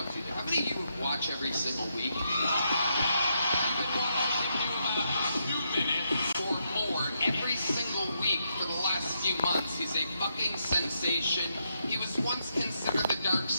How many of you watch every single week? You've been watching him 2 minutes or more every single week for the last few months. He's a fucking sensation. He was once considered the Dark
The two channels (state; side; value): inverted; both; correlation -0.80